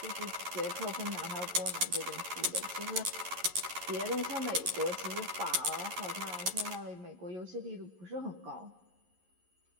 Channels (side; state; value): left; late; 11 ms